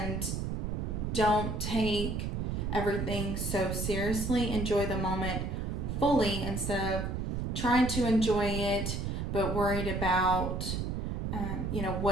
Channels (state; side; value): noise; right; rumble, 2 dB below the sound